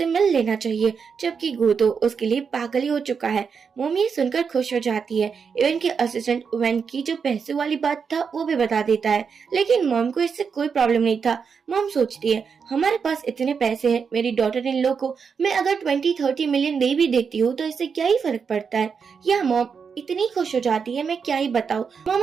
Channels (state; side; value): quieter; left; 6.1 dB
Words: मिल लेना चाहिए, जबकि गो तो उसके लिए पागल ही हो चुका है। मॉम ये सुनकर खुश हो जाती है। इवन के असिस्टेंट वैन की जो पैसे वाली बात था वो भी बता देता है, लेकिन मॉम को इससे कोई प्रॉब्लम नहीं था। मॉम सोचती है, हमारे पास इतने पैसे हैं, मेरी डॉटर इन लॉ को मैं अगर 20-30 मिलियन दे भी देती हूँ तो इससे क्या ही फर्क पड़ता है। यह मॉम इतनी खुश हो जाती है, मैं क्या ही बताऊं।